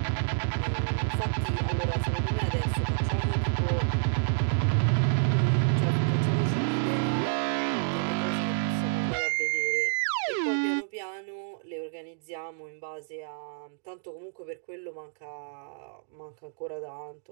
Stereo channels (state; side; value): silent; left; digital silence